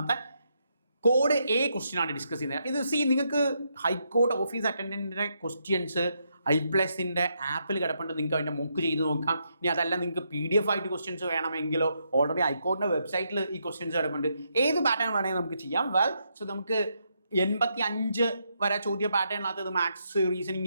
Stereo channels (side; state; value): both; inverted; correlation -0.79